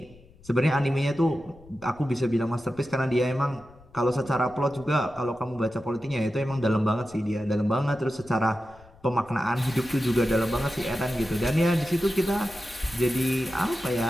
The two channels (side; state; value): left; noise; rumble, 24 dB below the sound